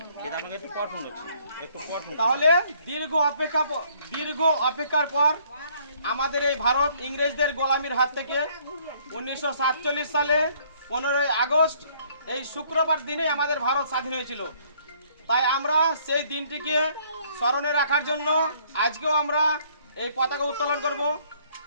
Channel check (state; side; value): inverted; both; correlation -0.62